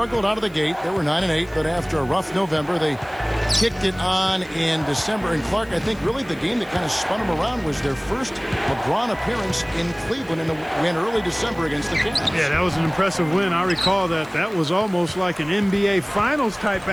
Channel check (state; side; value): noise; right; hiss, 27 dB below the sound